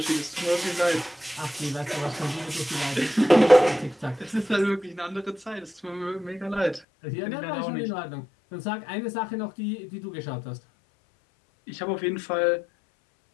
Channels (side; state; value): right; drops out; at 6.8 s